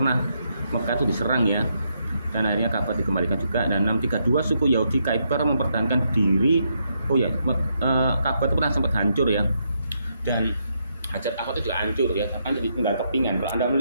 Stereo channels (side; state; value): both; inverted; correlation -0.78